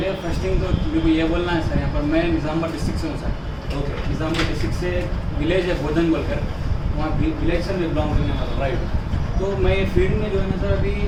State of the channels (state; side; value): identical; both; correlation 1.00